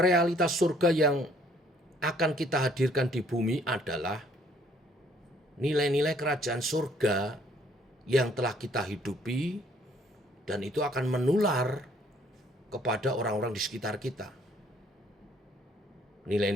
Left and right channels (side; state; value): both; normal; correlation 0.62